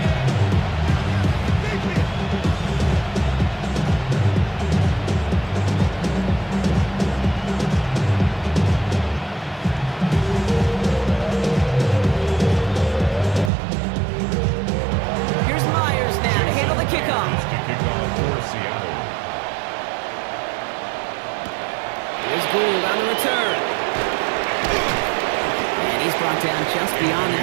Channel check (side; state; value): left; drops out; at 13.5 s